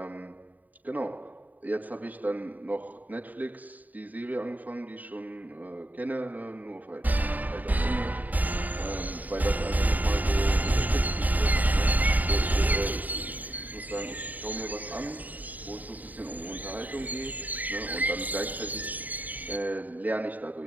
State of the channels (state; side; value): late; left; 0.080 ms